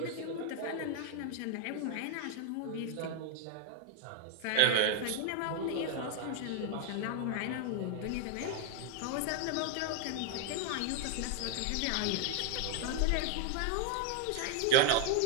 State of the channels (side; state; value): both; different; correlation 0.00